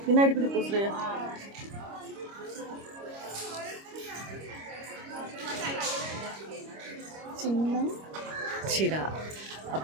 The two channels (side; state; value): left; late; 25 ms